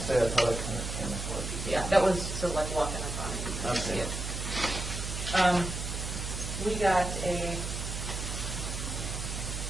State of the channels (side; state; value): right; noise; hum, 5 dB below the sound